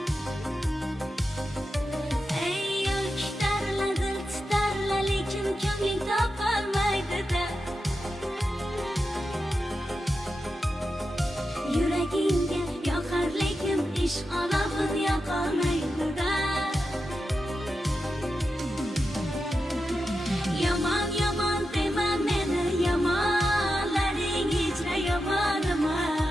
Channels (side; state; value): both; normal; correlation 0.89